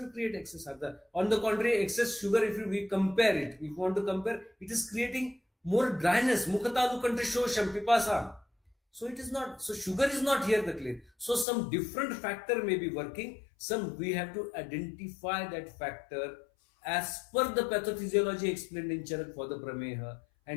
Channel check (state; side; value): drops out; right; at 11.5 s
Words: create excess ardrata. On the contrary, excess sugar, if we compare it, if we want to compare, it is creating more dryness. Mukhatalu kantrashosham pipasam. So it is not, so sugar is not here the clay. So some different factor may be working. Some we have to identify that factor as per the pathophysiology explained in Charak for the Prameha,